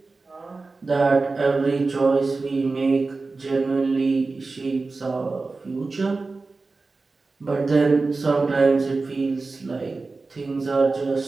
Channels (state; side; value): quieter; left; 3.8 dB